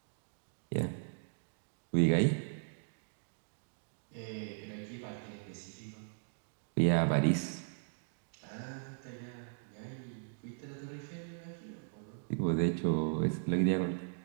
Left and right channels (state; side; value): silent; left; digital silence